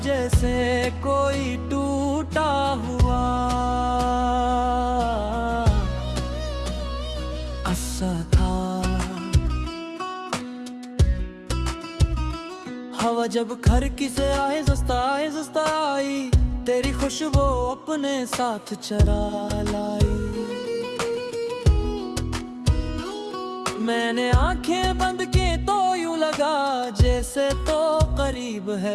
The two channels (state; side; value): identical; both; correlation 1.00